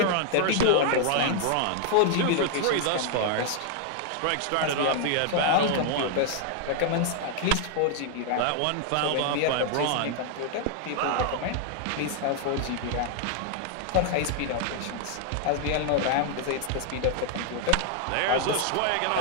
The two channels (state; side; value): different; both; correlation 0.00